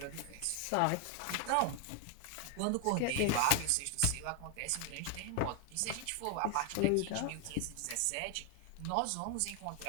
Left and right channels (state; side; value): different; both; correlation 0.00